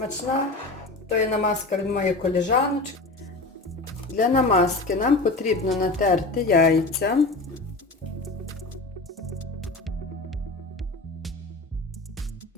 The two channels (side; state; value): right; quieter; 3.2 dB